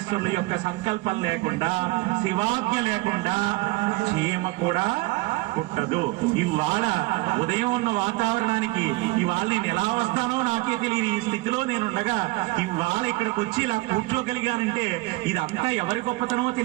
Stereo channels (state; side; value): quieter; left; 22.0 dB